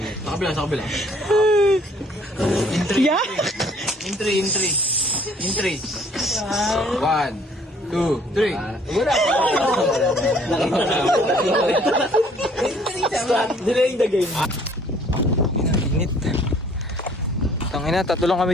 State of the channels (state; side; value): normal; both; correlation 0.59